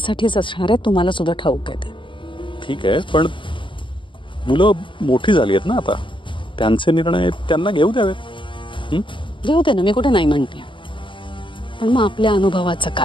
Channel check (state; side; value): late; right; 0.24 ms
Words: असणार आहे, तुम्हाला सुद्धा ठाऊक आहे ते। ठीक आहे, पण मुलं मोठी झाली आहेत ना आता, त्यांचे निर्णय त्यांना घेऊ द्यावेत। घेऊ दे ना, मी कुठे नाही म्हणते, पण मग आपल्या अनुभवाचं